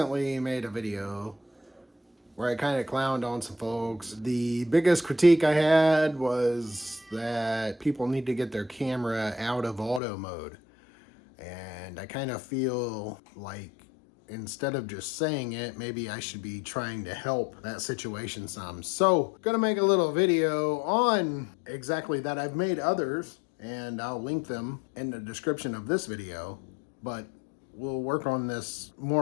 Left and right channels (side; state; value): right; drops out; at 10.0 s